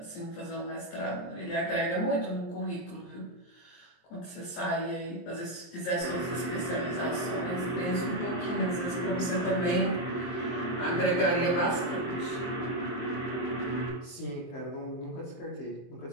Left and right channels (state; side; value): late; right; 23 ms